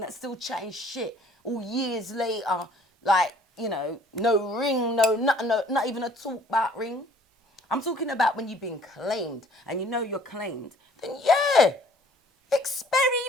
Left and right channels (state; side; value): normal; both; correlation 0.56